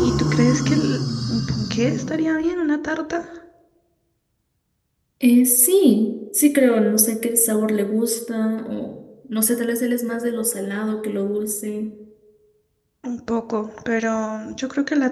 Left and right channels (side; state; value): both; identical; correlation 1.00